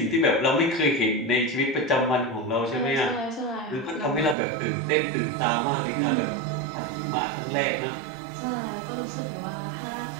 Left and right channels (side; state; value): left; drops out; at 4.4 s